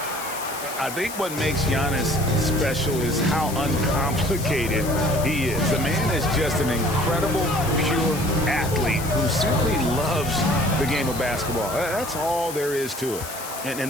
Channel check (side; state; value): left; noise; hiss, 10 dB below the sound